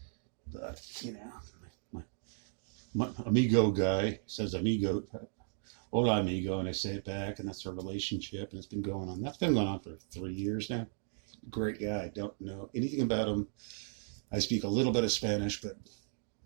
but my amigo guy says amigo, hola amigo, and I say it back, and that's our relationship, and it's been going on. That's been going on for 3 years now. Great guy. Don't know anything about him. I speak a little bit of Spanish, but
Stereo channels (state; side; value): silent; left; digital silence